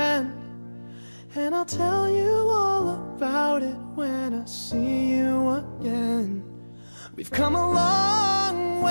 and I'll tell you all about it when I see you again. We've come a long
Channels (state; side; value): inverted; both; correlation -1.00